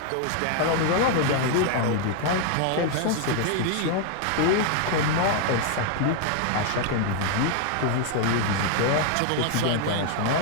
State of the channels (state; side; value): different; both; correlation 0.00